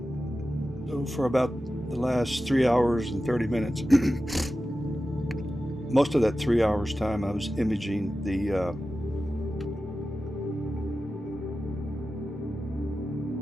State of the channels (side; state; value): both; normal; correlation 0.93